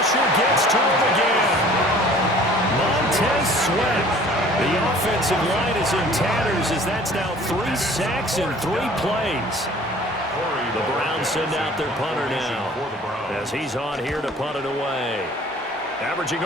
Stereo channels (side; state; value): both; normal; correlation 0.50